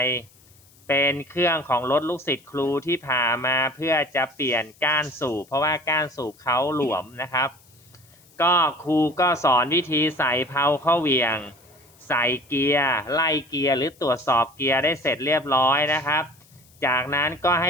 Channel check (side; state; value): left; noise; hiss, 28 dB below the sound